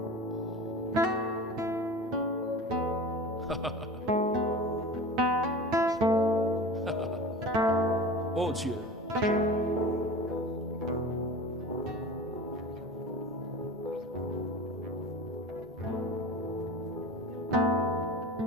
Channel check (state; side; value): normal; both; correlation 0.35